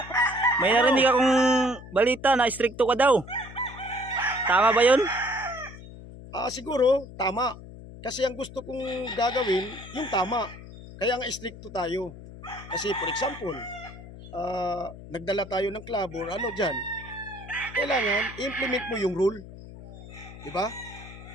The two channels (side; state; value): left; noise; hum, 15 dB below the sound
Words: May narinig akong balita na stricto ka daw. Tama ba yun? Siguro, tama. Kasi ang gusto kong gagawin, yung tama. Kaya nga stricto tayo. Kasi for example, nagdala tayo ng club or ano dyan, kailangan i-implement mo yung rule. Diba?